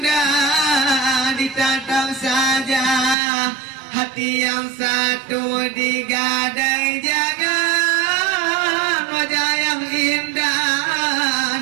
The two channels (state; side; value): drops out; left; at 3.2 s